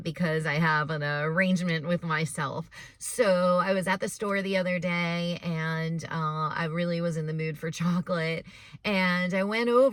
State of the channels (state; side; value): identical; both; correlation 1.00